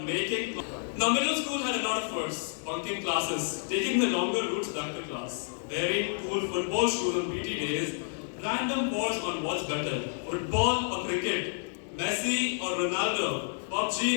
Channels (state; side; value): silent; right; 58 dB below the other